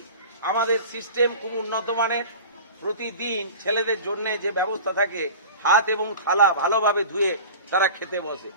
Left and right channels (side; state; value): both; inverted; correlation -0.37